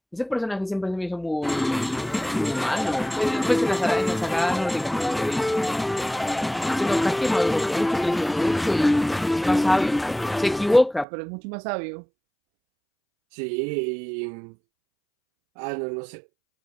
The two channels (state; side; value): drops out; left; at 11.1 s